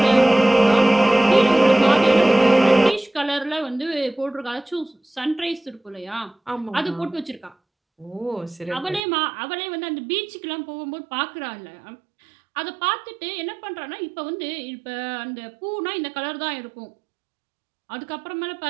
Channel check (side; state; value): left; drops out; at 9.0 s